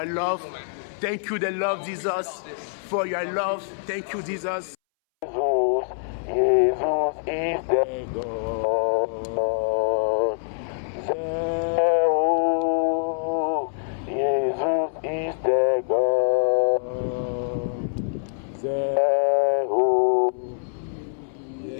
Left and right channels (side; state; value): right; silent; 62 dB below the other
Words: love. Thank you, the Lord Jesus, for your love. Thank you, Jesus. Jesus is the God. Jesus is the God.